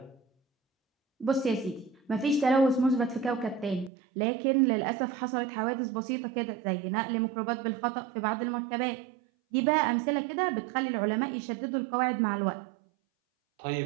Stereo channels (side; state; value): left; drops out; at 3.9 s